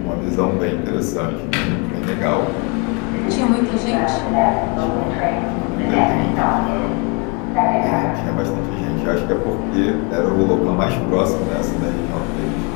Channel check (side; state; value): right; quieter; 32.7 dB